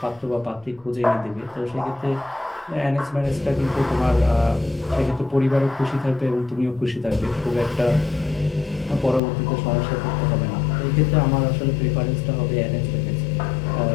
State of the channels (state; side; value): drops out; right; at 9.2 s